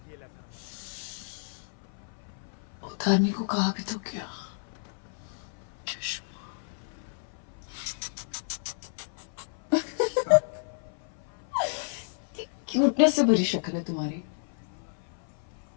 उतारने को कहा भी तो क्या। क्यूटनेस से भरी शक्ल है तुम्हारी।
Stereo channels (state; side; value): silent; right; 56 dB below the other